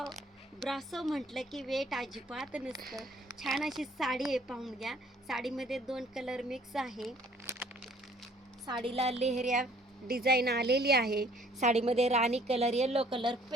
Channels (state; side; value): normal; both; correlation 0.58